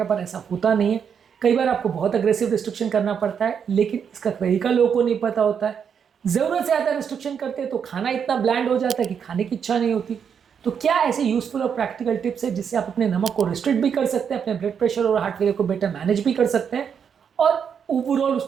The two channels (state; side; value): quieter; left; 7.3 dB